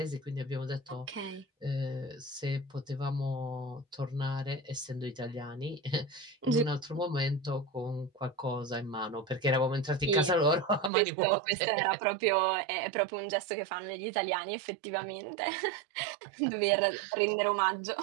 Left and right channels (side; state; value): left; drops out; at 10.9 s